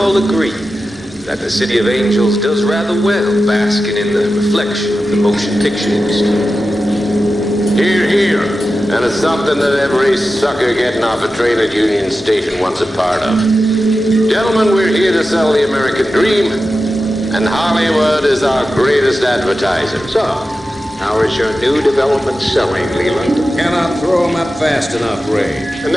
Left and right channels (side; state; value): both; normal; correlation 0.92